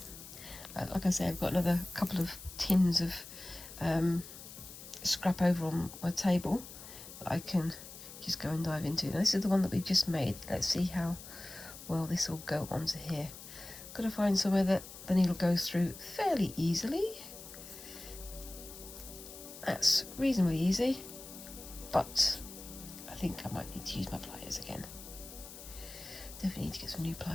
Like I say, I've got another couple of tins of scrap over on my table that I can just go and dive into. Now this is the one that we've just made. Let's see how well this will go onto here. got to find somewhere that the needle goes through fairly easily. That's reasonably easy, but I think I might need to use my pliers again. Definitely need to get some new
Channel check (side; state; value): left; noise; hiss, 14 dB below the sound